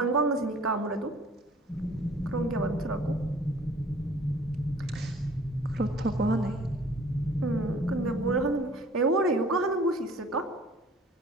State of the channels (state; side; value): normal; both; correlation 0.52